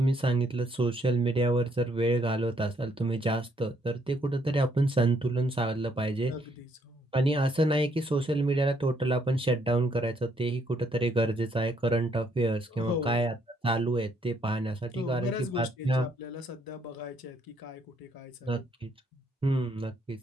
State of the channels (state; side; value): normal; both; correlation 0.70